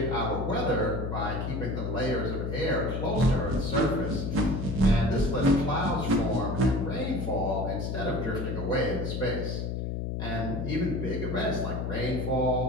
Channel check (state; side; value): noise; left; hum, 2 dB below the sound